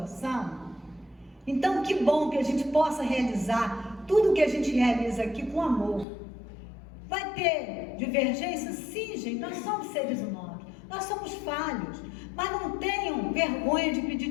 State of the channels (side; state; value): right; drops out; at 6.1 s